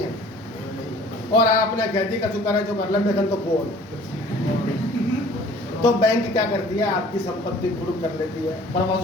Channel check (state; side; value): normal; both; correlation 0.50